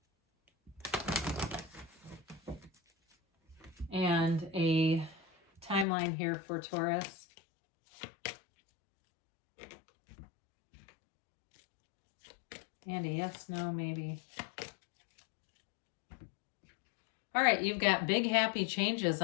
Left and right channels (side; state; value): right; drops out; at 5.9 s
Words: And a timeline here for Taurus. And a yes, no, maybe. All right, you've got big, happy changes